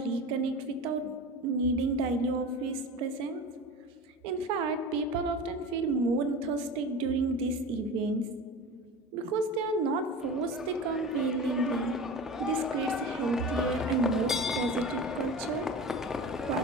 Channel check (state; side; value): normal; both; correlation 0.32